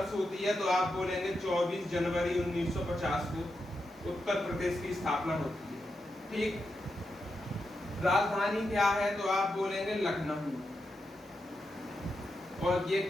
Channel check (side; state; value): both; normal; correlation 0.86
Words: होती है तो आप बोलेंगे 24 जनवरी 1950 को उत्तर प्रदेश की स्थापना होती है। ठीक, राजधानी क्या है तो आप बोलेंगे लखनऊ, और ये